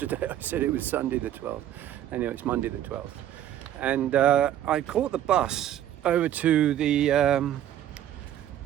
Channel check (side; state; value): left; quieter; 11.5 dB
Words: I said it was Sunday the 12th. Anyway, it's Monday the 12th. And I caught the bus over to the